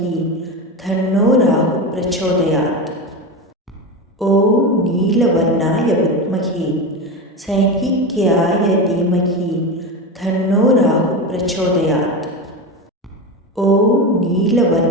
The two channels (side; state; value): both; normal; correlation 0.21